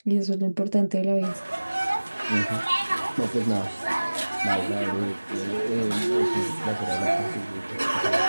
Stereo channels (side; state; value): both; inverted; correlation -1.00